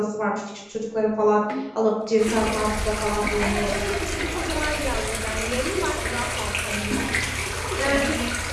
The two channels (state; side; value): identical; both; correlation 1.00